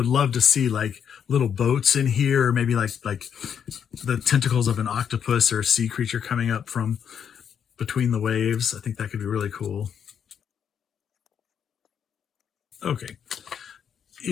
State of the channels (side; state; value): right; quieter; 8.0 dB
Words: love to see like little boats in here, or maybe like the tentacles of an octopus or a sea creature coming up from between the waves. I think that could be really cool. Okay,